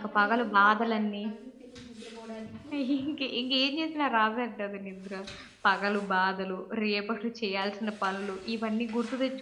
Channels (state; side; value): identical; both; correlation 1.00